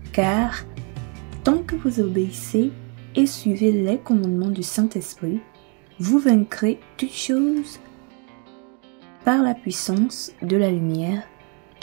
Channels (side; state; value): left; quieter; 36.6 dB